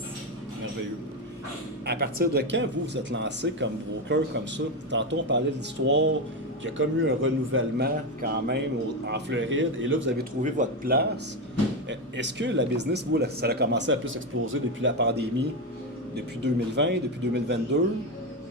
Merveilleux. À partir de quand vous êtes lancé comme broker comme ça? Tantôt, on parlait de l'histoire qu'il y a comme eu un renouvellement quand même en Floride et là, vous avez trouvé votre place. Est-ce que la business, vous, ça a commencé à plus exploser depuis la pandémie, depuis 2020, depuis 2022?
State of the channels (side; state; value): both; normal; correlation 0.11